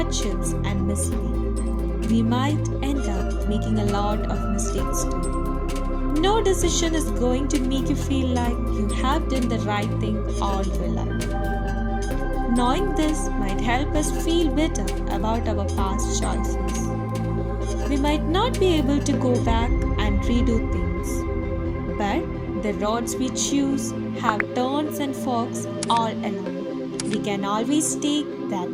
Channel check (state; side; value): identical; both; correlation 1.00